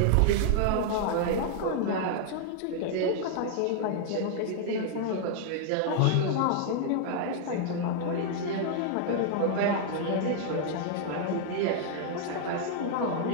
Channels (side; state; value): both; different; correlation -0.01